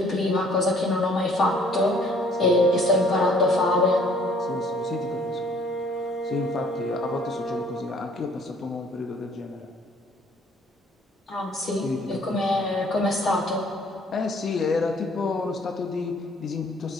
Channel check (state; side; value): normal; both; correlation 0.58